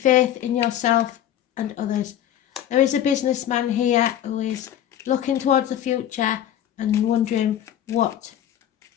in yourself and others. There is a businessman here who is looking towards the future and wondering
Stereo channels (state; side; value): quieter; right; 11.1 dB